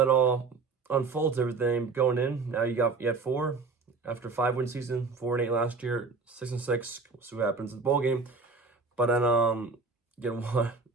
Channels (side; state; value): left; quieter; 4.4 dB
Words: all unfolds, everything going in. Now you had 4 after 5-win season, 4-8 last year, 6 and 6. We'll see what happens in the ball game. But then get one.